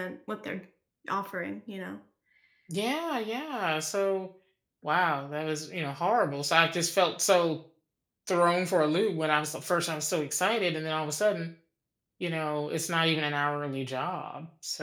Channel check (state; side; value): identical; both; correlation 1.00